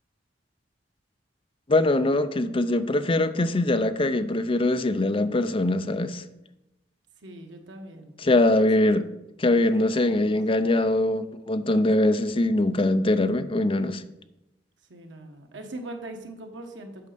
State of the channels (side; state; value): both; normal; correlation 0.63